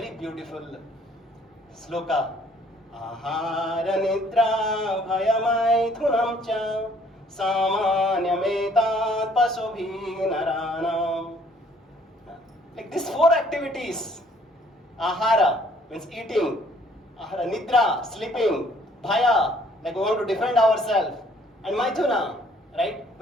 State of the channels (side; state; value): both; normal; correlation 0.61